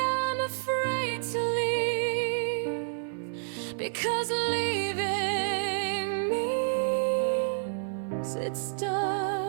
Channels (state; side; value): silent; left; 57 dB below the other